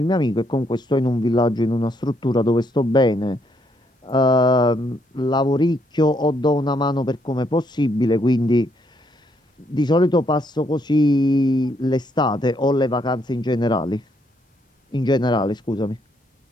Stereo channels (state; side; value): normal; both; correlation 0.73